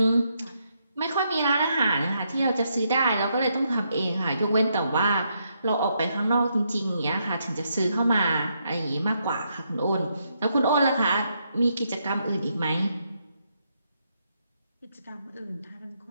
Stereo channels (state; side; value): inverted; both; correlation -0.78